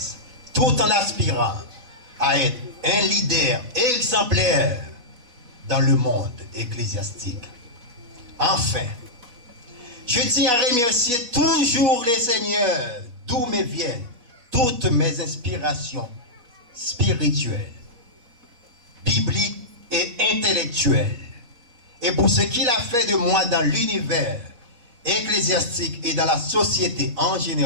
tout en aspirant à être un leader exemplaire dans le monde ecclésiastique. Enfin, je tiens à remercier toujours les seigneurs d'où me viennent toutes mes inspirations spirituelles, bibliques et intellectuelles, et pour ce qu'il a fait de moi dans l'univers ecclésiastique et dans la société en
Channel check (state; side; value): late; left; 4.1 ms